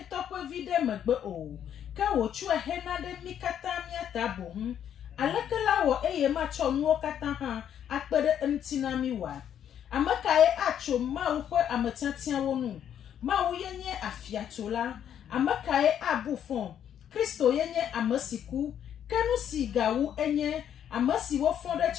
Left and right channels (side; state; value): right; quieter; 9.5 dB